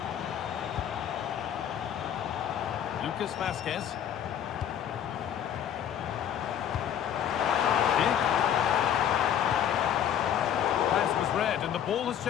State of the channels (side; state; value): right; quieter; 9.7 dB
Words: Lucas Vazquez. Pass was read and the ball has